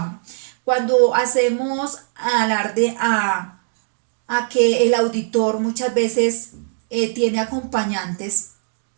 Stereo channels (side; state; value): left; silent; digital silence